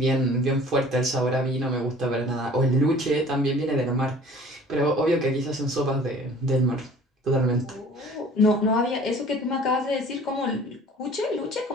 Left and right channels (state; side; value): normal; both; correlation 0.49